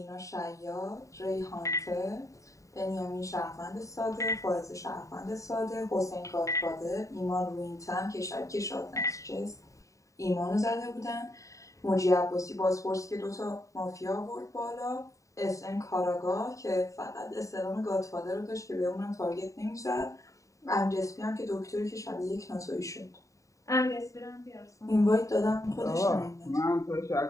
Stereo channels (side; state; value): right; late; 0.16 ms